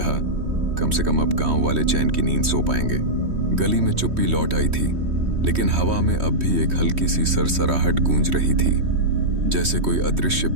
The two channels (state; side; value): late; left; 3.1 ms